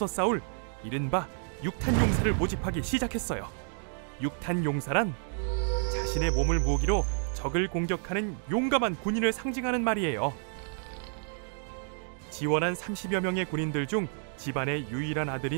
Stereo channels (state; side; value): silent; left; 55 dB below the other